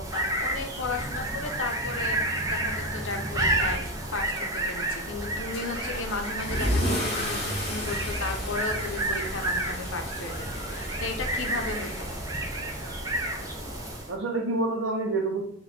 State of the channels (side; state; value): both; normal; correlation 0.15